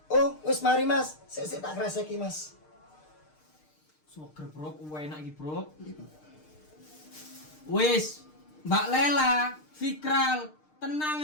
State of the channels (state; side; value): late; right; 6.6 ms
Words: Oh, wis mari Mas. Sik tak kreseki Mas. Soger bro, enak iki bro. Wis, Mbak Lela, Fikral, tenang